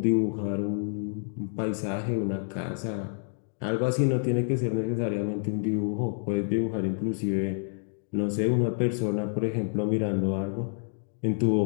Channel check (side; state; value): right; silent; digital silence